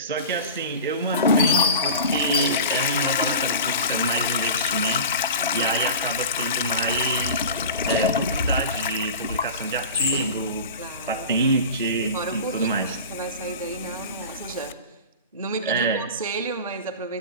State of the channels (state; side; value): inverted; both; correlation -0.32